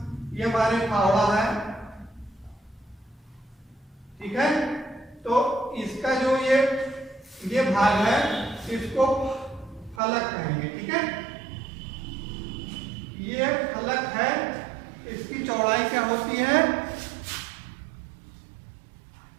ये हमारे फावड़ा है, ठीक है। तो इसका जो ये भाग है इसको फलक कहेंगे, ठीक है। ये फलक है, इसकी चौड़ाई क्या होती है,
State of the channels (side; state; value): left; drops out; at 10.0 s